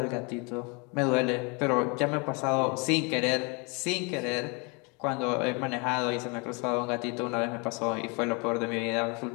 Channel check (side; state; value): right; quieter; 31.2 dB